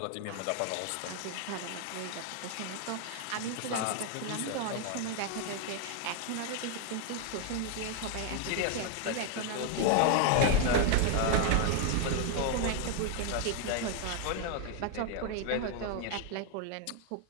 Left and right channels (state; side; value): different; both; correlation 0.00